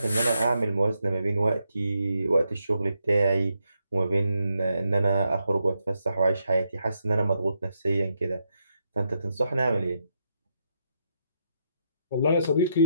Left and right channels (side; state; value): both; inverted; correlation -0.80